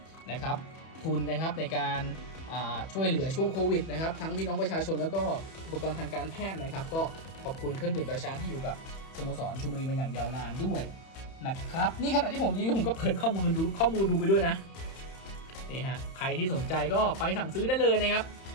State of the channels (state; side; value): late; right; 31 ms